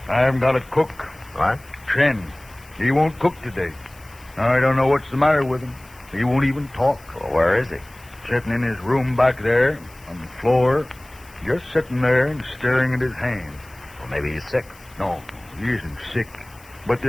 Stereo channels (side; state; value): left; noise; hiss, 25 dB below the sound